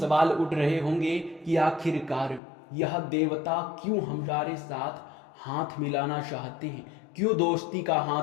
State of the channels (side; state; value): right; drops out; at 2.4 s